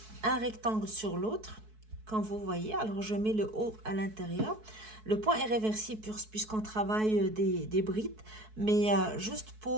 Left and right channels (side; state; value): left; late; 4.6 ms